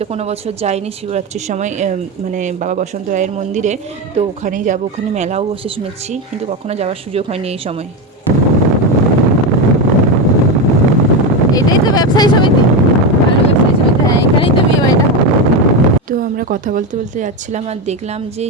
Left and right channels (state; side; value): normal; both; correlation 0.14